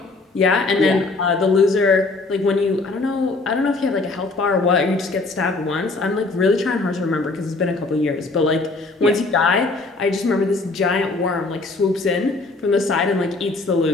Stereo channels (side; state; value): right; quieter; 3.5 dB